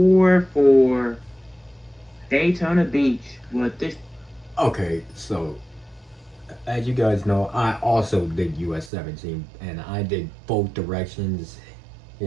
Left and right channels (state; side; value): drops out; left; at 8.9 s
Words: for Daytona Beach. With this, Okay, so as you guys know, I also did US 17 and I did both directions.